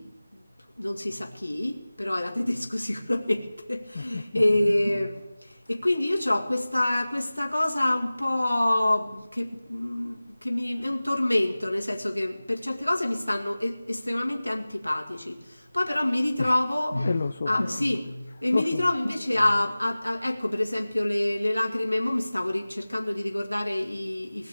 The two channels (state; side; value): inverted; both; correlation -0.98